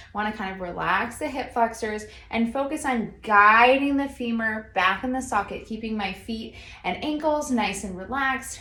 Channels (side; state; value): both; identical; correlation 1.00